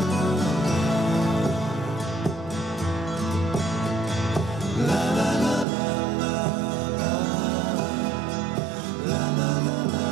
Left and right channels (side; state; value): left; drops out; at 5.7 s